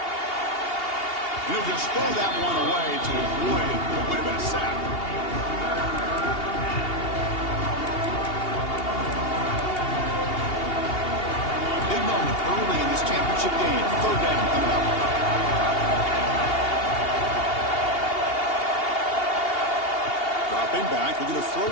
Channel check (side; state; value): right; late; 2.8 ms